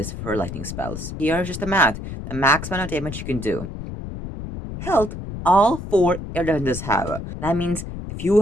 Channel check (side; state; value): left; noise; rumble, 8 dB below the sound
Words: for lightning spells. Here's just the max amount of damage you can do. Health, all 4 air defenses have. That means if you